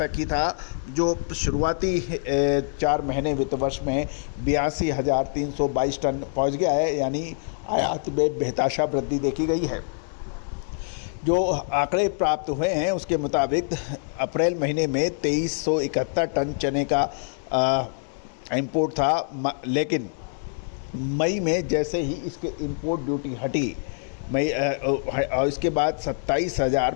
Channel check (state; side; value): silent; right; digital silence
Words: ही था, जो शुरुआती 4 महीने वित्त वर्ष में 82,322 टन पहुंच गया है, यानी आयात में बेतहाशा वृद्धि देखी गई है। जो आंकड़े प्राप्त हुए हैं उसके मुताबिक अप्रैल महीने में 2371 टन चने का इंपोर्ट था, लेकिन मई में जैसे ही इसके इंपोर्ट ड्यूटी हटी और इसके बाद